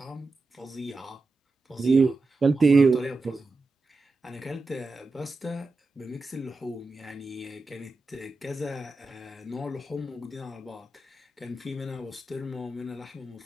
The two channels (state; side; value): quieter; left; 3.2 dB